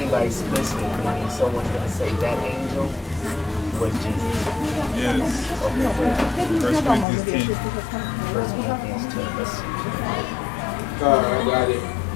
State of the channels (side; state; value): right; drops out; at 7.1 s